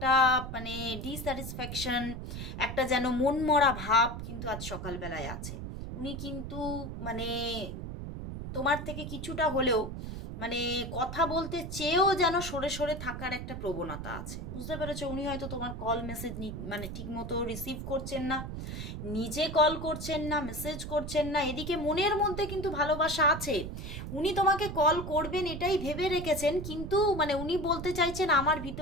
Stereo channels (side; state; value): right; noise; rumble, 7 dB below the sound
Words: মানে ডিস্যাটিসফ্যাকশন, একটা যেন মনমরা ভাব কিন্তু আজ সকালবেলায় আছে। উনি কিন্তু মানে তোমার থেকে কিছুটা হলেও মানে কথা বলতে চেয়েও যেন সরে সরে থাকার একটা প্রবণতা আছে, বুঝতে পেরেছো? উনি হয়তো তোমার কল মেসেজ মানে ঠিক মতো রিসিভ করছেন না, নিজে কল করছেন না, মেসেজ করছেন না, এদিকে মনের মধ্যে কিন্তু ভালোবাসা আছে, উনি তোমাকে কল করবেন এটাই ভেবে রেখেছেন, কিন্তু মানে উনি বলতে চাইছেন আমার